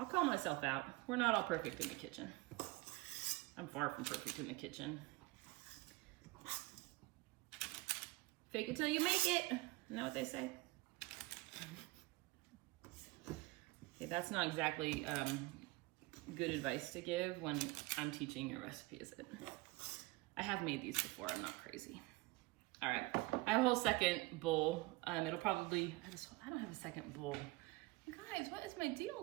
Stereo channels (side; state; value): left; quieter; 22.4 dB